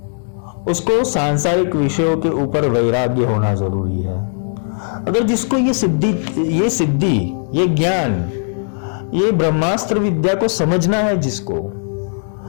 उसको सांसारिक विषयों के ऊपर वैराग्य होना जरूरी है। अगर जिसको ये सिद्धि, ये ज्ञान, ये ब्रह्मास्त्र विद्या को समझना है जिसको,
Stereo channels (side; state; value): right; silent; digital silence